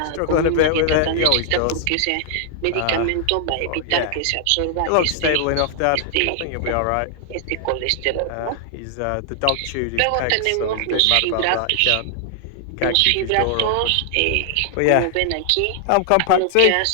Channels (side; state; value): both; different; correlation 0.00